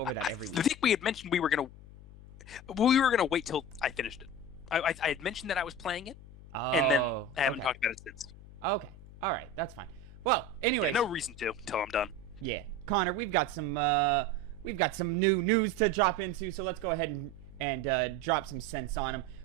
that every week. I think we had mentioned we were gonna wait till I finished it. I had mentioned that I was playing it, and then I haven't talked about it since. Okay. All right. That's fine. Well, anyways. No reason to until I'm done. Yeah. Connor, we've got some new news to drop into, so let's go ahead and drop some sense on them.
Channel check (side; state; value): left; noise; hum, 18 dB below the sound